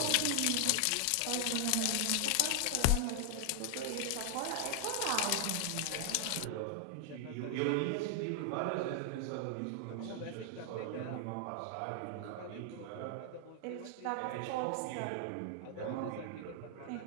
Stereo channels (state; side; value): different; both; correlation 0.00